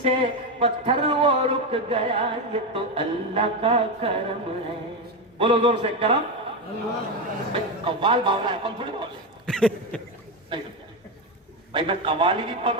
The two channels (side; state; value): both; normal; correlation 0.12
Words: پتھر وہ رک گیا، یہ تو اللہ کا کرم ہے۔ بولو زور سے، کرم۔ قوال باولا ہے، کون تھوڑی بولے نہیں سمجھا بھائی، میں قوالی بھی پڑھ